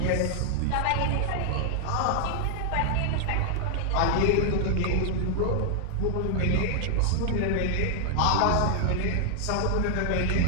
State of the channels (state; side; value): different; both; correlation 0.00